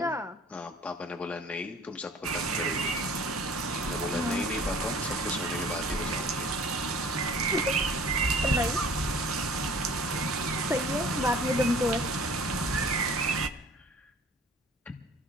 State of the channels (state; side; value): normal; both; correlation 0.49